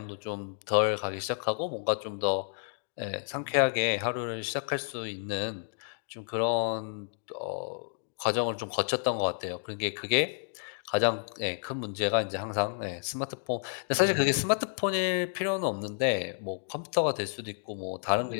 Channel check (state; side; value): silent; right; digital silence